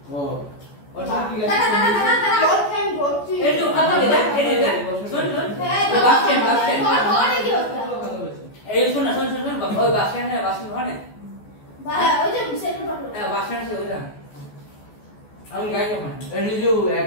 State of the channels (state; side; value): late; right; 14 ms